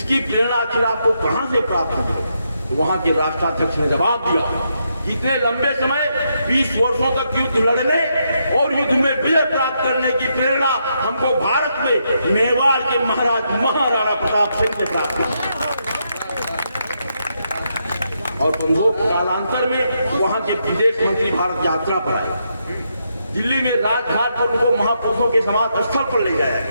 प्रेरणा आखिर आपको कहां से प्राप्त हुई? तो वहां के राष्ट्राध्यक्ष ने जवाब दिया, इतने लंबे समय 20 वर्षों तक युद्ध लड़ने और युद्ध में विजय प्राप्त करने की प्रेरणा हमको भारत में मेवाड़ के महाराज महाराणा प्रताप सिंह से प्राप्त हुई। और बंधुओं, कालांतर में वहां के विदेश मंत्री भारत यात्रा पर आए। दिल्ली में राजघाट पर उनको महापुरुषों के समाधि स्थल पर ले जाया।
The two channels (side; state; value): both; inverted; correlation -0.80